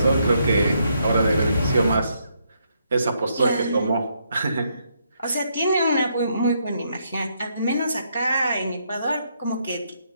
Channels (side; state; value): both; inverted; correlation -0.75